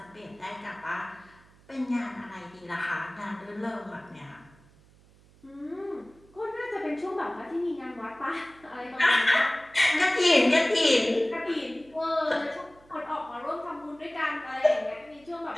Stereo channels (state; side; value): noise; right; hum, 27 dB below the sound